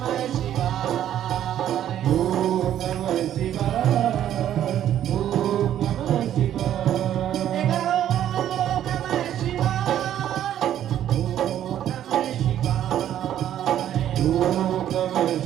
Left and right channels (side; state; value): left; quieter; 11.1 dB